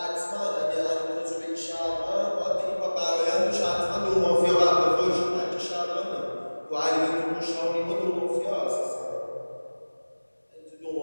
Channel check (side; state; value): both; inverted; correlation -1.00